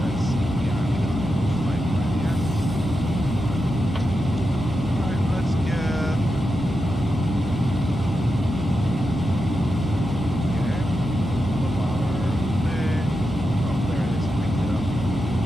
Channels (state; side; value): normal; both; correlation 0.88